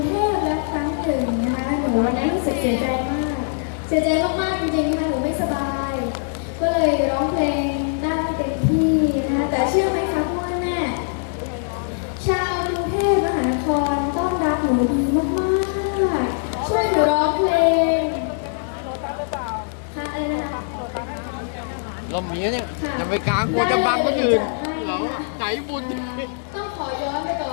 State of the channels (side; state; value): right; silent; digital silence